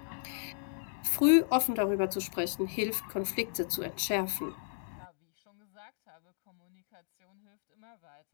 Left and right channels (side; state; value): right; silent; digital silence